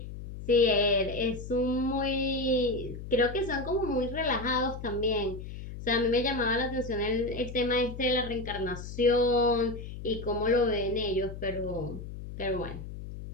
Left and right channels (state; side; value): noise; left; hum, 10 dB below the sound